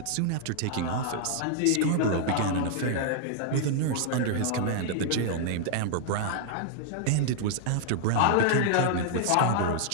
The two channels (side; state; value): both; different; correlation -0.01